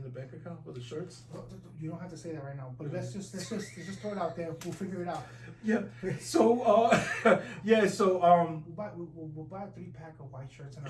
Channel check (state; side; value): identical; both; correlation 1.00